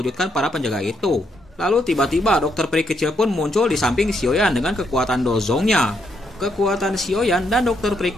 para penjaga itu. Lalu tiba-tiba dokter peri kecil pun muncul di samping Xiaoyan dengan kekuatan dozongnya. Kekuatan Xiaoyan dan dokter peri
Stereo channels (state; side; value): normal; both; correlation 0.76